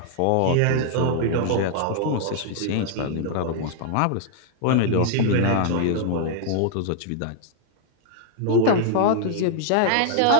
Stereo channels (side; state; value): both; different; correlation 0.00